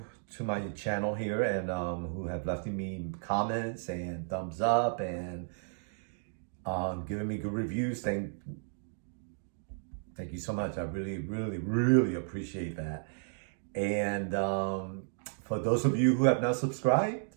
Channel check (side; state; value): left; silent; digital silence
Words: my channel here and who have left me comments and thumbs up and giving me good reviews. Thank you so much. I really appreciate that. And for those of you who have not subscribed,